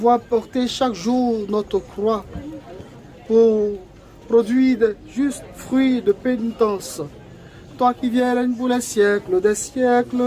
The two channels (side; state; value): both; identical; correlation 1.00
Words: porter chaque jour notre croix pour produire de justes fruits de pénitence. Toi qui viens règne pour les siècles des siècles.